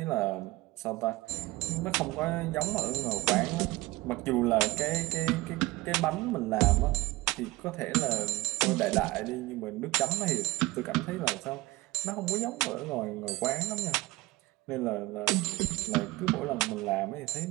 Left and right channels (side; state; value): left; quieter; 20.7 dB